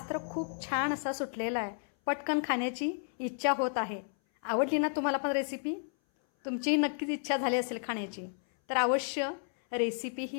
तर खूप छान असा सुटलेला आहे. पटकन खाण्याची इच्छा होत आहे. आवडली ना तुम्हाला पण रेसिपी? तुमचीही नक्कीच इच्छा झाली असेल खाण्याची. तर अवश्य रेसिपी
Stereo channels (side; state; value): right; silent; 56 dB below the other